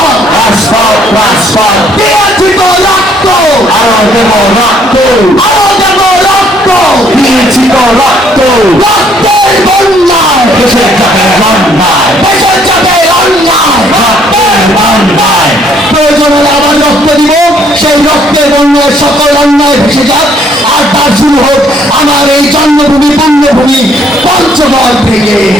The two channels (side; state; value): both; normal; correlation 0.65